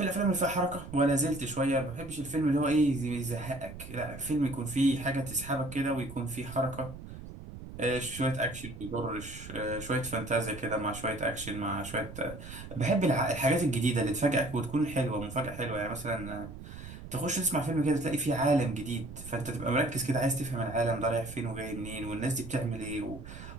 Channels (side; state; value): right; noise; rumble, 13 dB below the sound